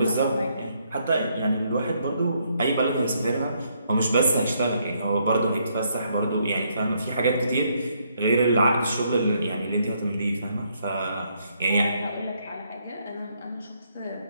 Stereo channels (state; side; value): inverted; both; correlation -0.73